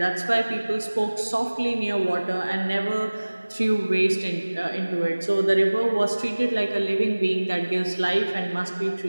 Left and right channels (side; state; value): both; inverted; correlation -1.00